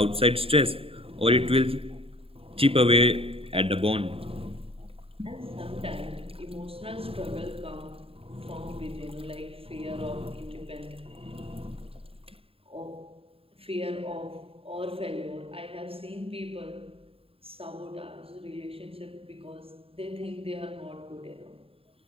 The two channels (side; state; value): left; late; 0.27 ms